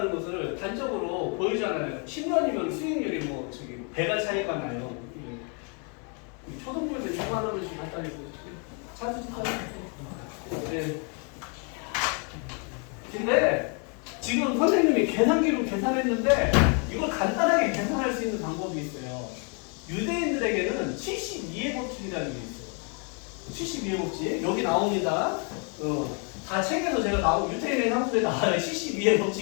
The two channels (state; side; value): quieter; right; 37.6 dB